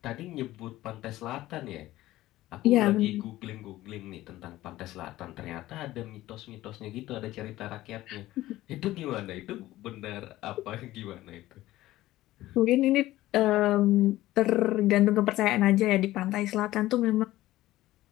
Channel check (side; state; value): right; quieter; 16.0 dB